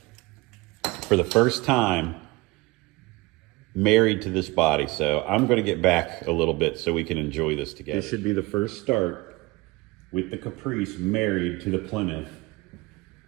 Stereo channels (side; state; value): left; quieter; 23.1 dB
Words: the first time married to this body. So I'm going to get back a little bit so we can enjoy this together. This should be the first start with the Caprice married to the Plymouth.